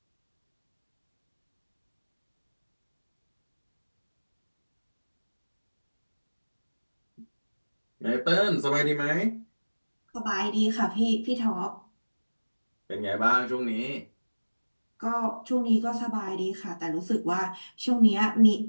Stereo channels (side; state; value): both; inverted; correlation -1.00